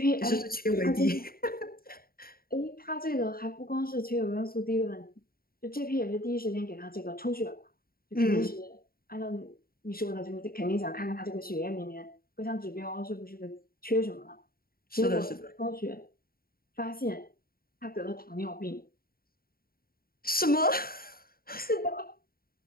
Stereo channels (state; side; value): late; right; 0.43 ms